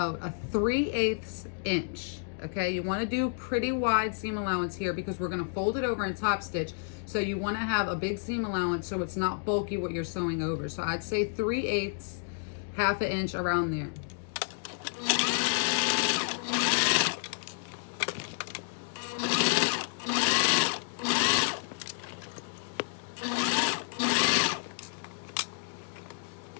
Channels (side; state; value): right; silent; digital silence